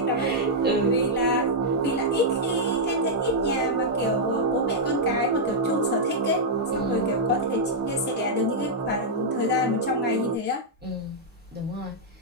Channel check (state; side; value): normal; both; correlation -0.06